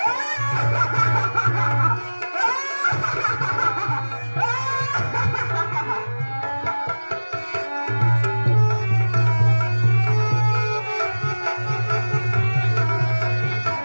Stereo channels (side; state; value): both; inverted; correlation -1.00